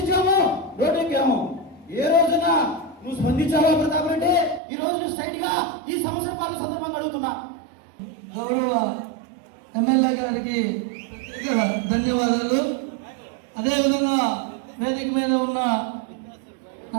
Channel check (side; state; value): left; drops out; at 4.6 s